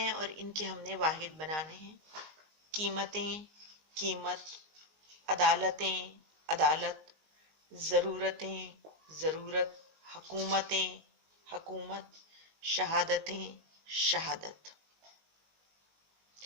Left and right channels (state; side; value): late; left; 19 ms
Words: اور ان کے ہم نے واحد بنانے ہیں، قیمتیں، قیمت، عدالتیں، عدالت، ضرورتیں، ضرورت، حکومتیں، حکومت، شہادتیں، شہادت۔